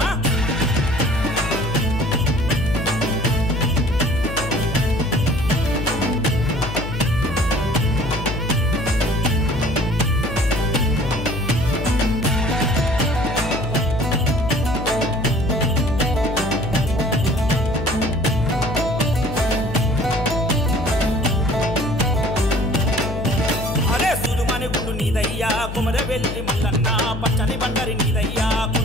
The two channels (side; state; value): left; noise; hum, 7 dB below the sound